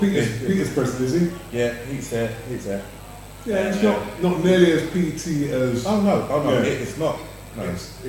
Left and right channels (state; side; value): identical; both; correlation 1.00